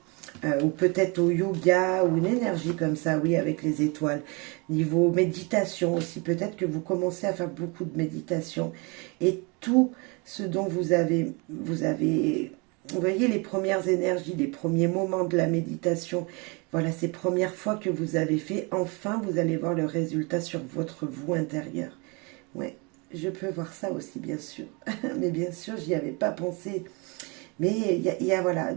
ou peut-être au yoga, ou une énergie comme ça, oui, avec les étoiles. Niveau méditation aussi, peut-être que vous commencez à faire beaucoup de méditation, et tout ce dont vous avez, vous voyez les premières énergies, les premiers moments de la méditation, voilà, ces premières fois que vous avez fait, enfin vous allez voir le résultat sur votre vous intérieur. Ouais, je peux voir ça aussi, bien sûr. Mais bien sûr, j'y avais pas pensé. Mais il y a voilà,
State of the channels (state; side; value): quieter; left; 29.9 dB